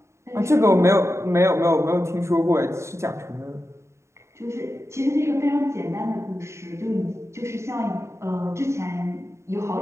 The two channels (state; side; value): late; left; 0.14 ms